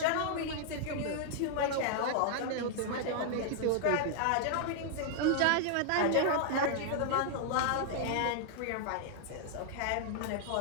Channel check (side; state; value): both; different; correlation -0.01